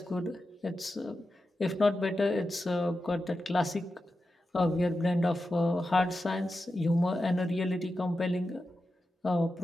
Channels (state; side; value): normal; both; correlation 0.91